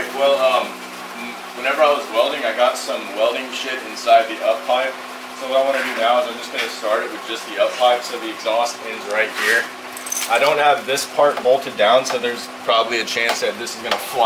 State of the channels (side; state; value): both; identical; correlation 1.00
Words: Well, whenever I was welding, I got some welding shit inside the up pipe. So what I want to do now is I'm just gonna start it with just the up pipe. So the exhaust ends right here. I don't have this part bolted down, so there's probably a chance that this is gonna